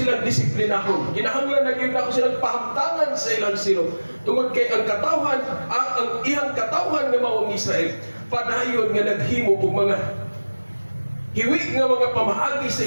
disiplinahon. Kinahanglan na gayon nako silang pahamtangan sa ilang silot. Tungod kay ang katawhan ang iyang katawhan nga mao ang Israel padayon nga naghimo og mga hiwi nga mga pamaagi sa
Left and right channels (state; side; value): inverted; both; correlation -1.00